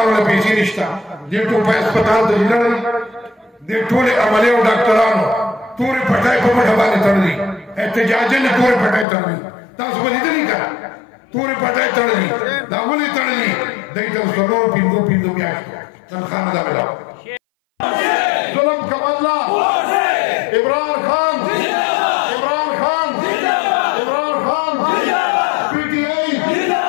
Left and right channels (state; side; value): drops out; right; at 9.1 s